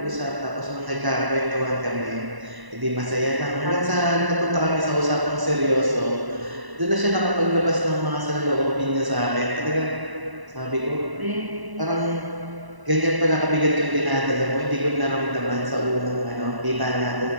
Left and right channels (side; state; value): left; late; 1.0 ms